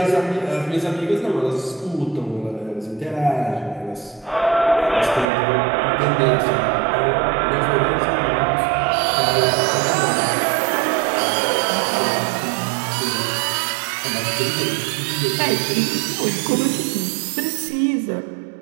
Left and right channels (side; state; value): left; drops out; at 5.2 s